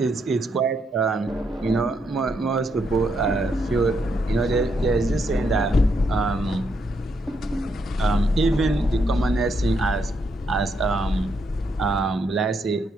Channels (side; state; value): both; normal; correlation 0.77